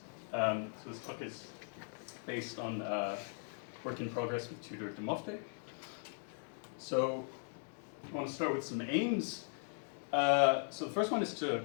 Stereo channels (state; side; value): silent; right; 52 dB below the other